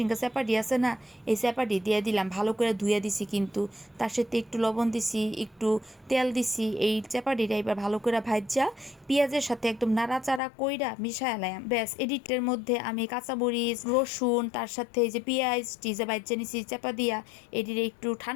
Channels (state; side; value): drops out; right; at 10.4 s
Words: চ্যাপাটি আছে না, এই চ্যাপাটি দিয়ে দিলাম, ভালো করে ধুয়ে দিছি, কিন্তু তার সাথে একটু লবণ দিছি, একটু তেল দিছি। এই চ্যাপাটিটা এবার ভালো করে ভাজা পেঁয়াজের সাথে একদম নাড়াচাড়া কইরা মিশায় লাম। ব্যাস এডিটের মধ্যে আমি কাঁচামরিচ রসুন তার সাথে এই যে পেঁয়াজ টিজে বাজ্যা নিছি চাপা দিয়া এটিরে একটু